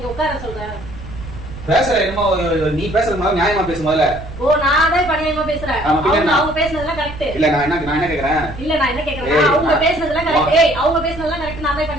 உட்கார சொல்றேன். பேசுற என்னமோ நீ பேசுறது மாதிரி நியாயமா பேசு முதல்ல. ஓ நான் தான் நியாயமா பேசுறேன். அவங்க பேசுனதெல்லாம் கரெக்ட். இல்ல நான் என்ன கேக்குறேன்? இல்ல நான் என்ன கேக்குறேன், அவங்க பேசுனதெல்லாம் கரெக்ட். ஏய் அவங்க பேசுனதெல்லாம் கரெக்ட். நான்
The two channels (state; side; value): noise; right; rumble, 13 dB below the sound